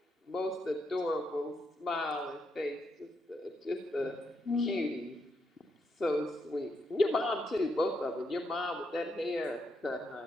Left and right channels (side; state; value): both; normal; correlation 0.80